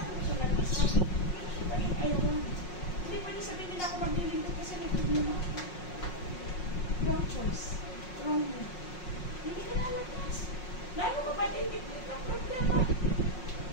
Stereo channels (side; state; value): right; late; 5.5 ms